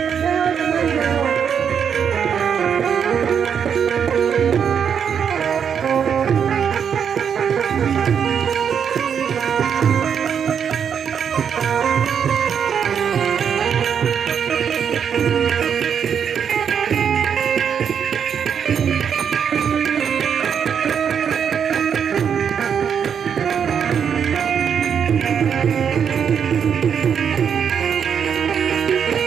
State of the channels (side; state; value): left; quieter; 7.6 dB